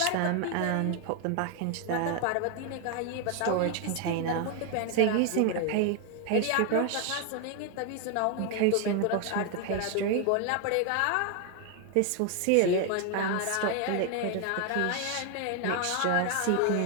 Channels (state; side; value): different; both; correlation 0.01